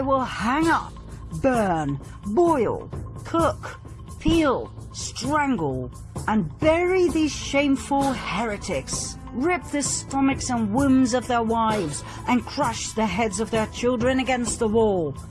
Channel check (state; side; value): identical; both; correlation 1.00